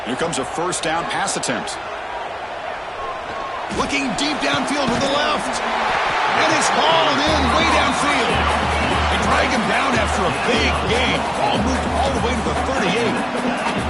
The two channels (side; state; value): both; identical; correlation 1.00